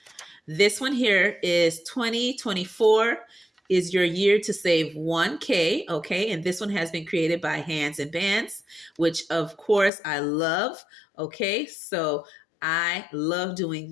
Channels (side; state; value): right; drops out; at 9.9 s